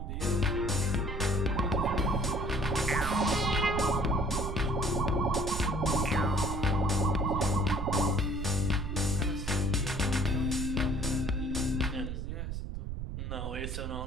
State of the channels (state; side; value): noise; right; rumble, 5 dB below the sound